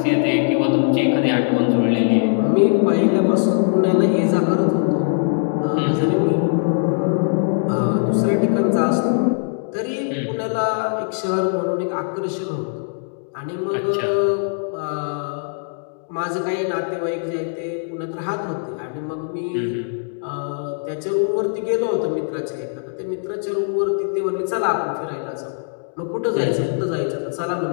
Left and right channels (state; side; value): silent; right; digital silence